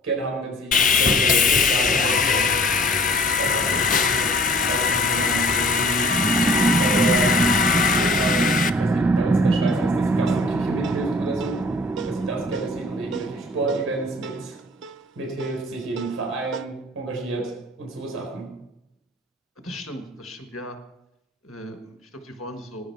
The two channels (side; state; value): both; normal; correlation 0.52